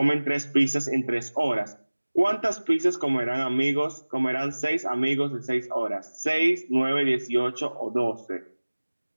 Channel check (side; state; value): both; inverted; correlation -1.00